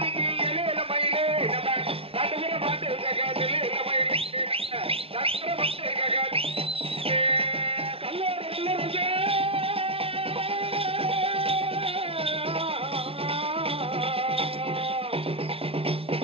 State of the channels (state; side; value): late; left; 0.27 ms